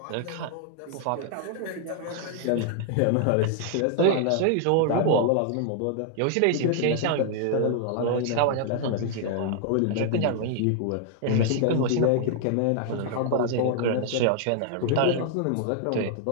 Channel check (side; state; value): both; different; correlation 0.00